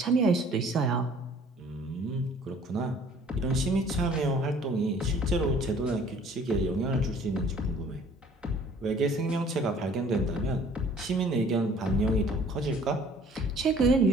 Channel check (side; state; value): both; normal; correlation 0.54